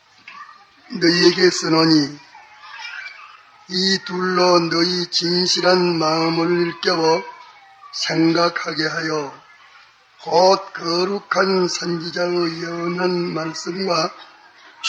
너희에게 쓰노니 이 둘로 너희 진실한 마음을 일깨워 생각하게 하여 곧 거룩한 선지자의 예언한 말씀과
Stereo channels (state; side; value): identical; both; correlation 1.00